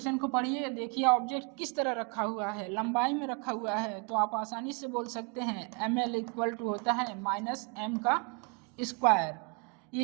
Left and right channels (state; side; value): quieter; left; 32.6 dB